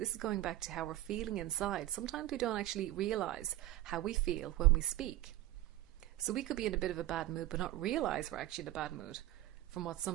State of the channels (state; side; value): quieter; left; 15.2 dB